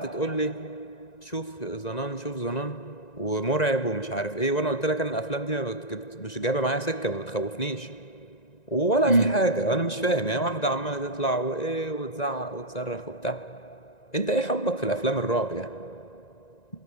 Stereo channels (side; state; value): right; late; 1.9 ms